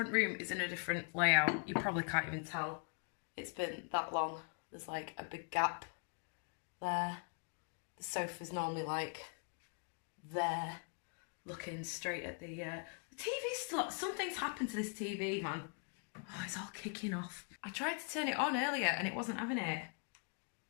room is in a different layout. You probably can't even tell. It's been that long. There's like a big gap there. The sofa's normally like there, looking straight at the TV's still, something's happened to this TV, man. Oh, it's all kicking off. I tried to turn it on earlier and it wasn't having it.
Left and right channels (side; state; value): right; quieter; 38.6 dB